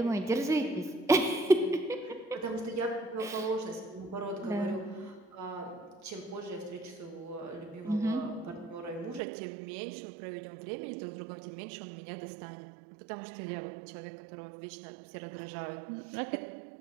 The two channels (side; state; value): left; drops out; at 9.2 s